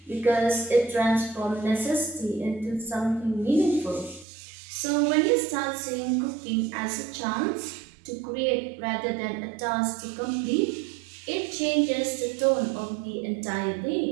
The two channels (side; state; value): left; drops out; at 4.2 s